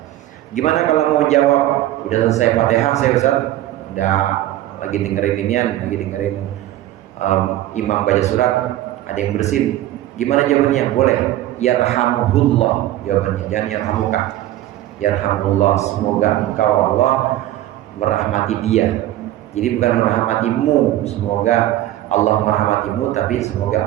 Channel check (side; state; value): left; quieter; 14.2 dB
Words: Gimana kalau mau jawab udah selesai Fatihah saya Ustaz, udah lagi dengerin imam baca surat, ada yang bersin, gimana jawabannya? Boleh yarhamuhullah jawabannya, jangan yarhamuka. Yarhamullah, semoga engkau Allah merahmati dia. Jadi bukan merahmatimu, semoga Allah merahmatimu, tapi